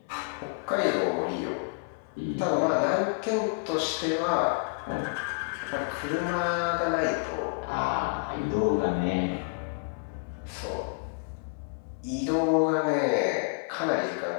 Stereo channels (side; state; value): right; quieter; 37.8 dB